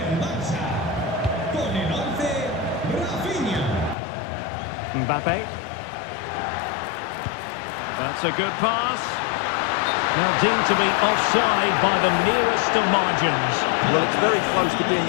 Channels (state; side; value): drops out; right; at 4.0 s